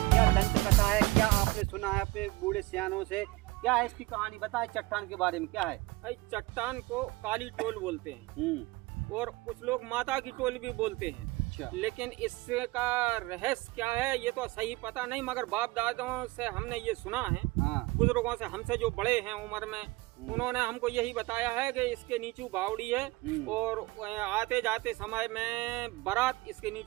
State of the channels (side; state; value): left; quieter; 21.4 dB